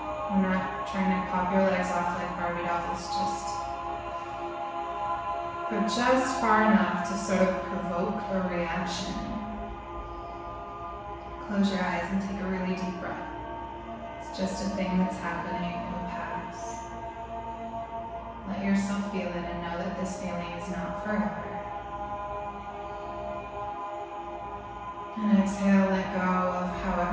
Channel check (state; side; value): identical; both; correlation 1.00